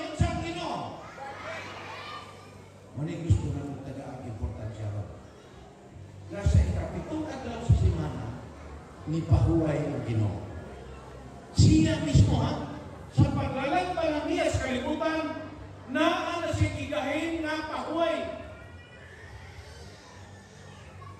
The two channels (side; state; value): both; identical; correlation 1.00